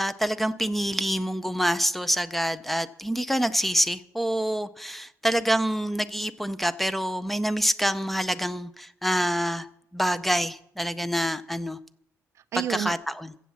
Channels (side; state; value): both; normal; correlation 0.94